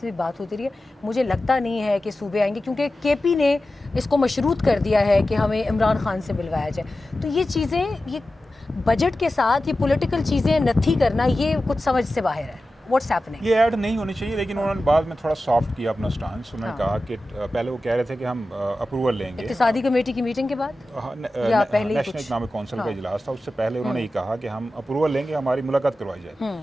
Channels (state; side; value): normal; both; correlation 0.94